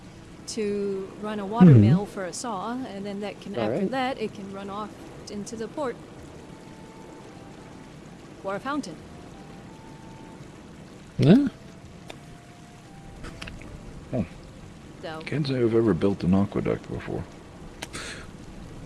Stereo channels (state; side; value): identical; both; correlation 1.00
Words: to run a water mill for a saw, and then that can after that it can run off into the port or a fountain. Yeah. So Can't say I've ever built an aqueduct before.